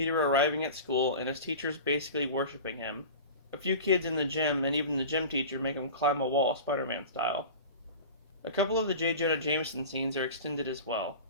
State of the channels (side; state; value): both; inverted; correlation -0.33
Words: arriving at school and his teachers basically worshipping him. A few kids in the gym and even the gym teacher make him climb a wall Spider-Man style. A couple of the J. Jonah Jameson scenes are extended as well,